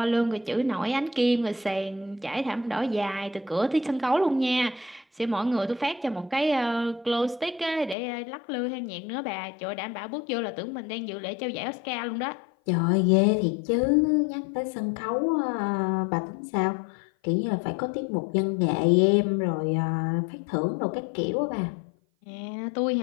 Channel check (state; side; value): drops out; right; at 8.0 s